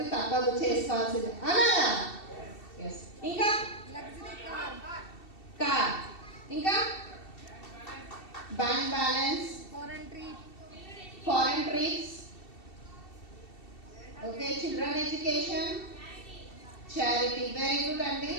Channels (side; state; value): right; late; 2.7 ms